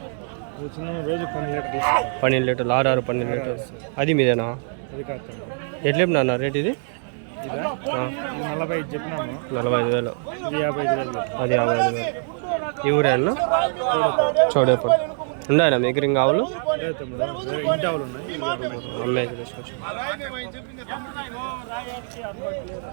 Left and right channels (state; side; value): silent; left; 58 dB below the other